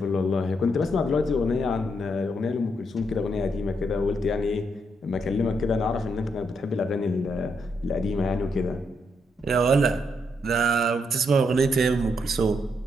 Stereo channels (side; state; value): both; normal; correlation 0.78